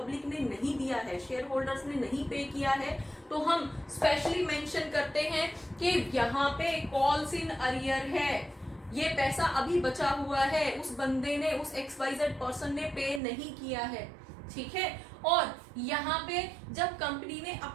ने नहीं दिया है, शेयर होल्डर्स ने नहीं पे किया है, तो हम स्पेशली मेंशन करते हैं कि यहाँ पे कॉल्स इन अरियर है, ये पैसा अभी बचा हुआ है, उस बंदे ने, उस XYZ पर्सन ने पे नहीं किया है, ठीक है। और यहाँ पे जब कंपनी ने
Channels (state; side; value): drops out; left; at 13.2 s